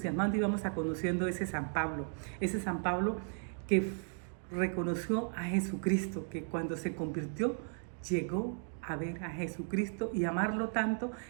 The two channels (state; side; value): silent; left; 54 dB below the other